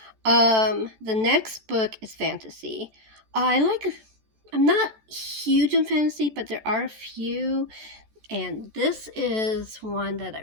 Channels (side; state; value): left; late; 14 ms